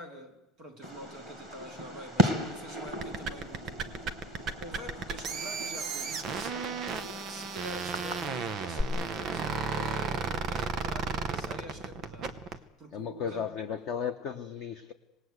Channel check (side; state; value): both; normal; correlation 0.41